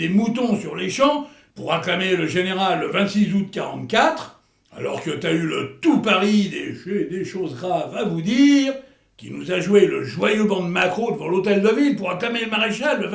moutons sur les champs pour acclamer le général le 26 août 44, alors que t'as eu le tout Paris des choses graves à vous dire, qui nous a joué le joyeux banc de Macro devant l'hôtel de ville pour acclamer le maréchal le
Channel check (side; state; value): both; identical; correlation 1.00